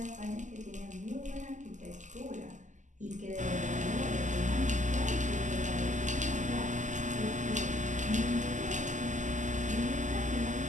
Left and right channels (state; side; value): late; left; 0.36 ms